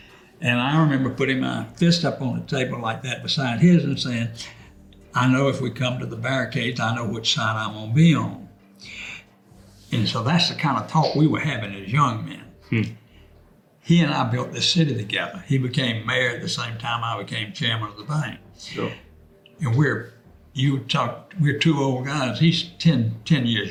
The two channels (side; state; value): both; identical; correlation 1.00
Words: I remember putting my fist up on the table like that beside his and saying, I know if we come to the barricades, I know which side I'm gonna be on. And so that's the kind of talk we were having as young men. He and I built this city together. He became mayor at the same time I became chairman of the bank. Sure. And we're two old guys. He's 10